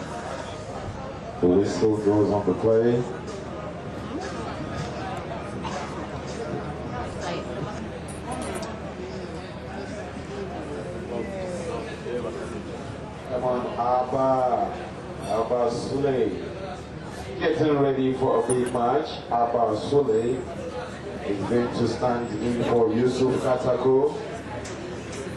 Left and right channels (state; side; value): identical; both; correlation 1.00